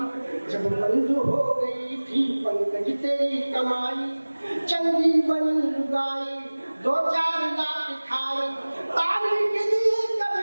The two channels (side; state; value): both; inverted; correlation -1.00